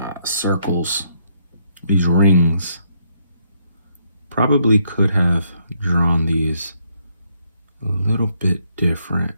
circles, these rings. Probably could have drawn these a little bit different.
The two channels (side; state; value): both; inverted; correlation -0.72